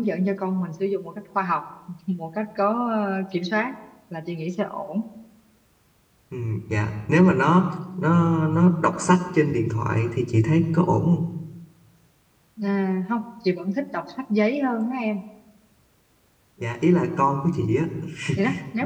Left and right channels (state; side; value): identical; both; correlation 1.00